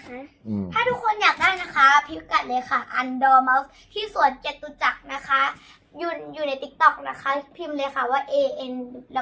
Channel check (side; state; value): both; identical; correlation 1.00